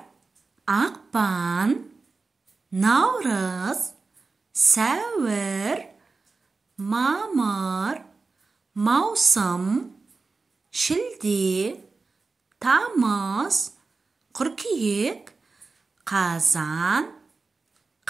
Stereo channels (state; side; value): quieter; left; 4.0 dB